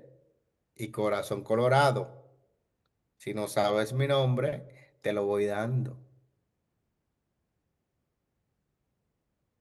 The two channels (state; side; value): identical; both; correlation 1.00